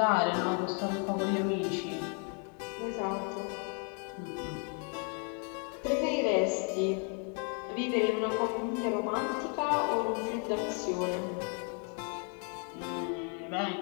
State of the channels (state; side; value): quieter; right; 39.6 dB